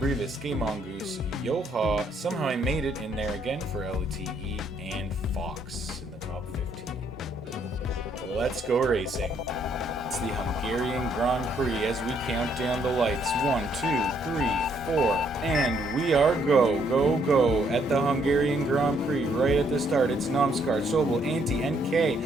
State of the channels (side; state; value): both; normal; correlation 0.70